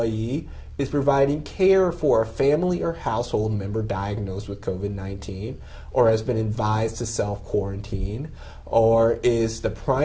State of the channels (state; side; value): identical; both; correlation 1.00